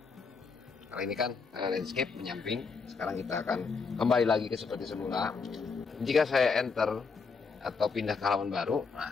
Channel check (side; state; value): right; quieter; 4.9 dB